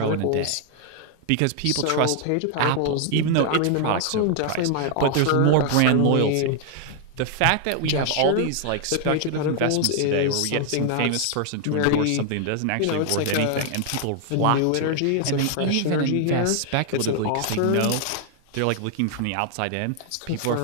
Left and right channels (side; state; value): both; different; correlation 0.00